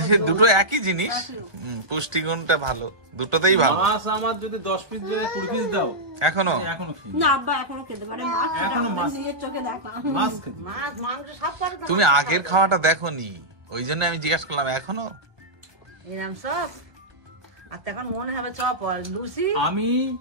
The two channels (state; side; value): late; left; 1.2 ms